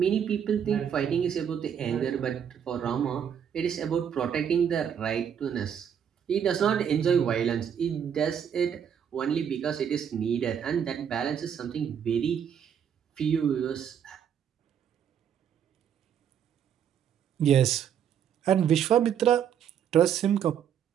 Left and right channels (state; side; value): quieter; left; 8.4 dB